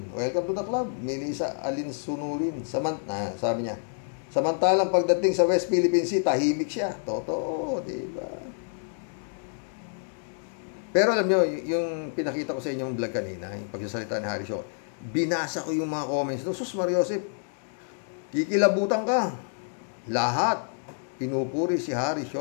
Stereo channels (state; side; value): silent; right; digital silence